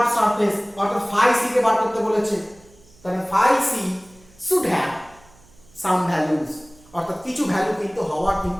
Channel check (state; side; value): noise; right; hum, 28 dB below the sound